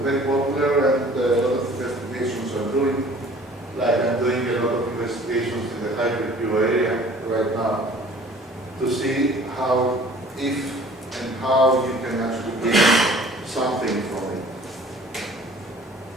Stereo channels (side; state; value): both; normal; correlation 0.50